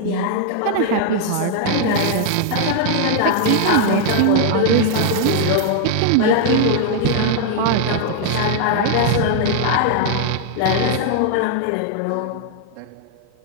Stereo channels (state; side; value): different; both; correlation 0.00